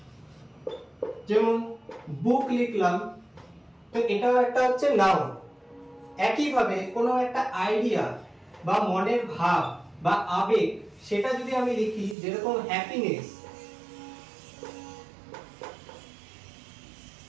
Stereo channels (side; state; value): left; drops out; at 12.2 s